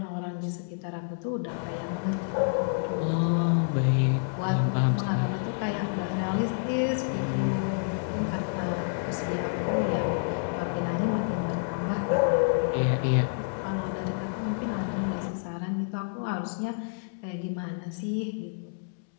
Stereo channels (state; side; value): silent; right; digital silence